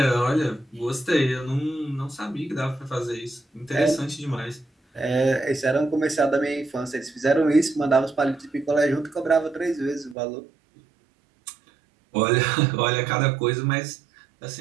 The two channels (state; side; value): drops out; left; at 10.2 s